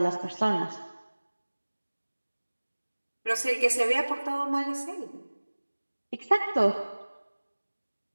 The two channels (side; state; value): both; inverted; correlation -1.00